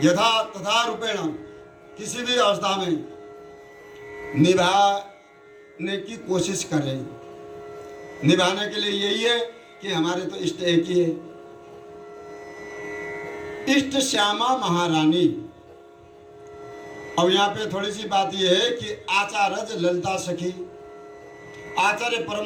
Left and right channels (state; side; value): identical; both; correlation 1.00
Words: यथा तथा रूपेण किसी भी अवस्था में निभाने की कोशिश करें। निभाने के लिए यही है कि हमारे तो इष्ट एक ही है, इष्ट श्यामा महारानी। अब यहाँ पे थोड़ी सी बात यह है कि आचार्य ललिता सखी, आचार्य